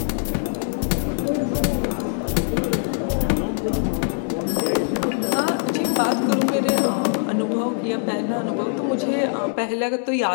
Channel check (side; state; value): right; silent; digital silence